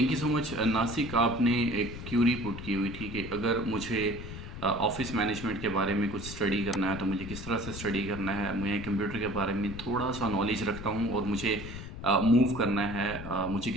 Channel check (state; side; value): noise; left; rumble, 10 dB below the sound